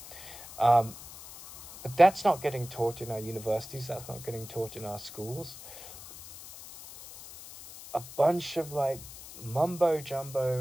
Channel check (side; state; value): left; noise; hiss, 15 dB below the sound